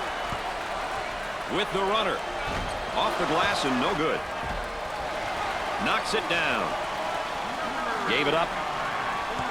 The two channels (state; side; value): identical; both; correlation 1.00